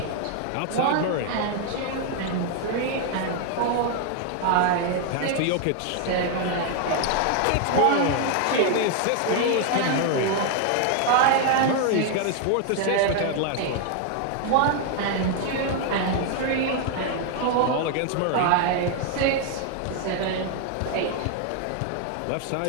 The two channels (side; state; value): both; different; correlation 0.00